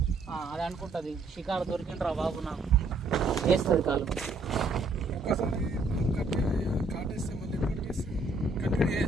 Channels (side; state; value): left; quieter; 3.4 dB